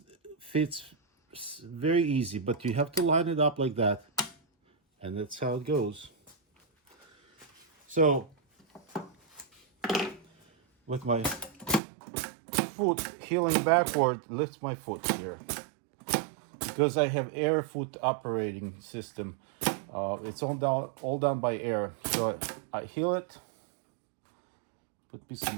fits very easy, but you have to line it up like that. And that's how it goes. So with my foot heeling backward, lift my foot here. Because I have air foot operating system, it's all done by air. So I heel it, put a piece of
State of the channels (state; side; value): drops out; left; at 11.8 s